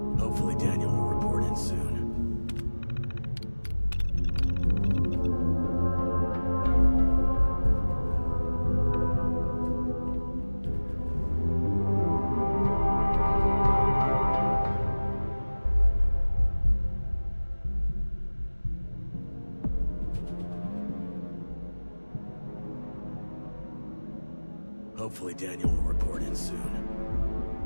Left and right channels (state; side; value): inverted; both; correlation -1.00